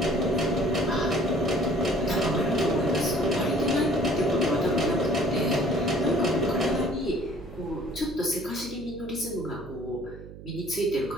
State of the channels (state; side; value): noise; right; hum, 15 dB below the sound